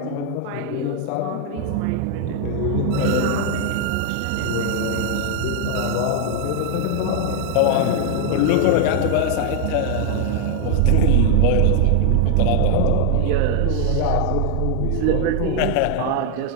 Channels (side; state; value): both; different; correlation 0.00